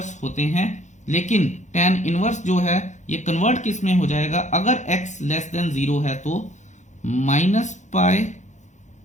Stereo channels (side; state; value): right; late; 0.35 ms